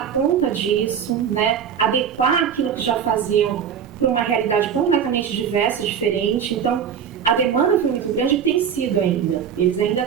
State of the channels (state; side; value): quieter; left; 8.0 dB